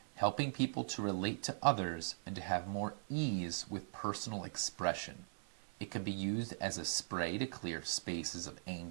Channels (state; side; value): silent; left; 51 dB below the other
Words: helping people to relate to others and to have more ease with personal expression. It can be used as a spray to clear spaces of